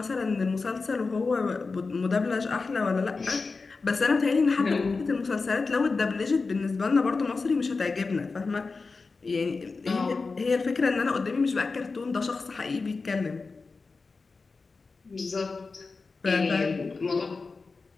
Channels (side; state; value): right; quieter; 4.2 dB